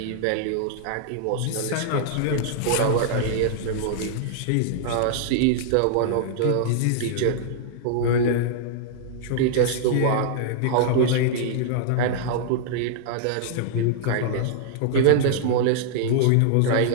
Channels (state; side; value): different; both; correlation -0.01